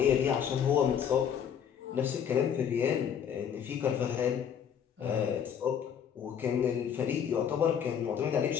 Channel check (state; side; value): quieter; right; 8.3 dB